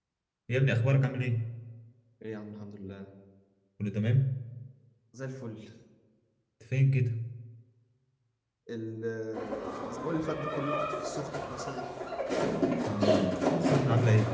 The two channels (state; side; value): identical; both; correlation 1.00